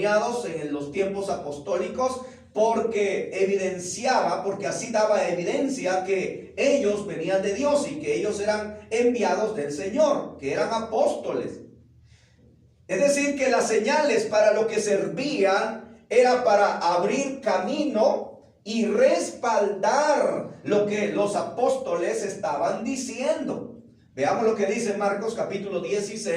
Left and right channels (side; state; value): both; identical; correlation 1.00